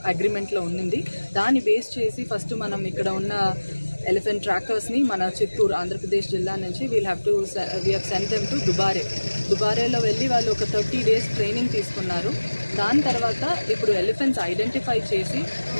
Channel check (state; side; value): inverted; both; correlation -1.00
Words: అగ్రిమెంట్లో ఉన్నింది. దాన్ని బేస్ చేసి ఫస్ట్ మనం ఇక్కడ ఉన్న ఎలిఫెంట్ ట్రాకర్స్ని మన చిత్తూరు ఆంధ్రప్రదేశ్ జిల్లా నుంచి we have sent them to దుబారేలో వెళ్ళి వాళ్ళు ఒక 30 days ట్రైనింగ్ తీసుకున్నారు. దాని తర్వాత ఇప్పుడు ఎలిఫెంట్స్ ఐడెంటిఫై చేసి